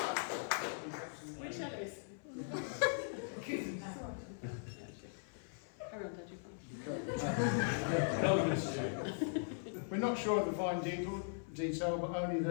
Which Ellis? Carry on, We're not sure of the fine detail, but only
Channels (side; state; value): right; silent; 51 dB below the other